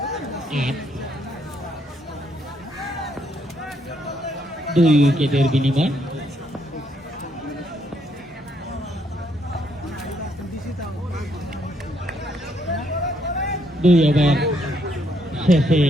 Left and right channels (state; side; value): normal; both; correlation 0.73